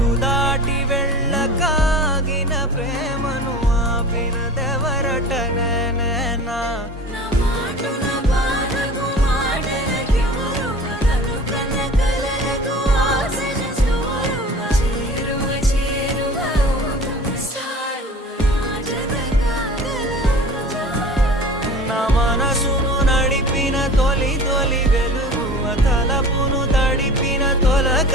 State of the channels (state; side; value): normal; both; correlation 0.40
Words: దాటి వెళ్ళకాగిన ప్రేమను ఆపినదెవరట నేనేనా మనసును నడిపిన తొలి తొలి వెలుగువ తలపును తడిపిన